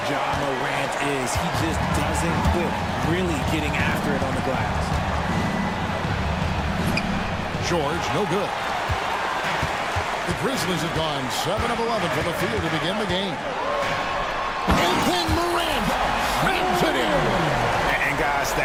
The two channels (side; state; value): both; identical; correlation 1.00